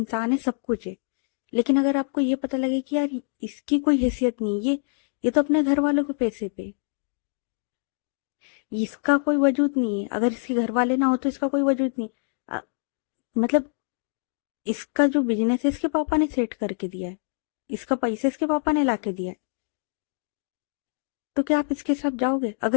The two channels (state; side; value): silent; right; digital silence